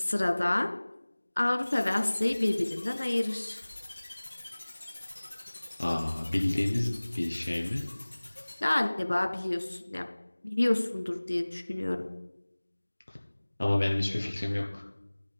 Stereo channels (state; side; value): inverted; both; correlation -1.00